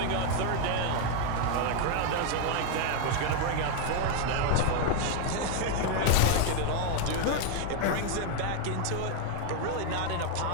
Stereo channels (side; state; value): both; different; correlation 0.00